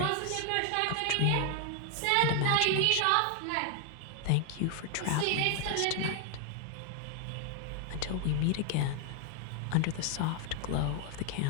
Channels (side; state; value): both; different; correlation 0.00